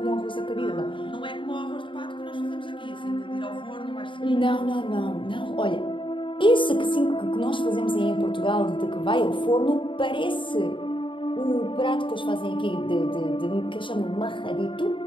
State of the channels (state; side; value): late; right; 0.24 ms